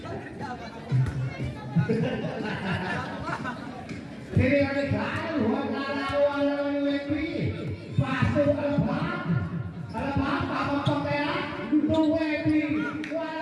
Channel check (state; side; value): identical; both; correlation 1.00